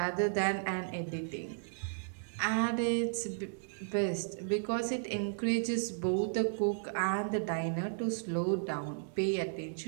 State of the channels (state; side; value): silent; left; digital silence